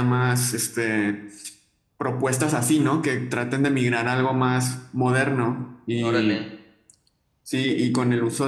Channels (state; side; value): identical; both; correlation 1.00